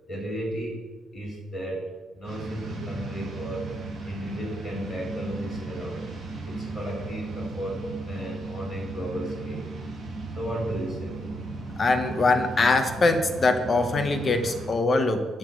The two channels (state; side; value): normal; both; correlation 0.80